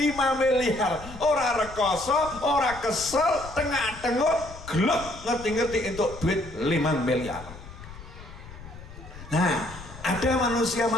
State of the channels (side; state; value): left; noise; rumble, 15 dB below the sound